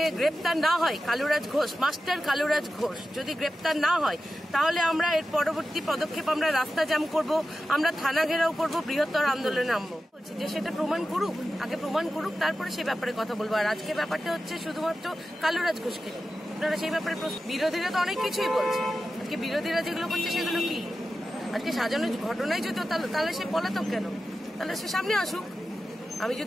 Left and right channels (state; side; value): normal; both; correlation 0.93